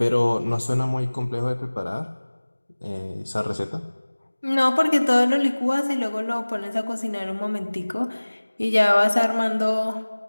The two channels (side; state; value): both; inverted; correlation -1.00